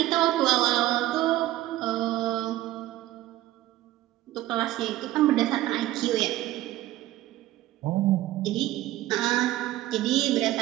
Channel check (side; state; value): left; quieter; 15.5 dB